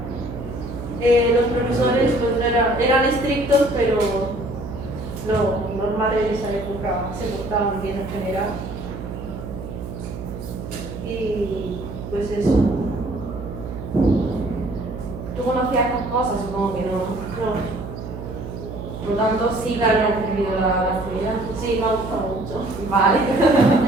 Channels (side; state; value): right; noise; hum, 9 dB below the sound